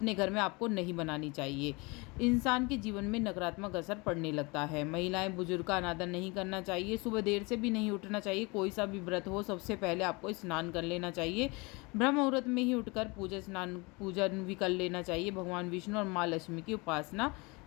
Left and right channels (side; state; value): right; quieter; 27.1 dB